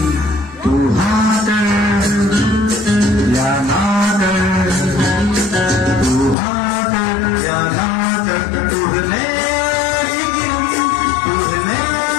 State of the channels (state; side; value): drops out; right; at 6.4 s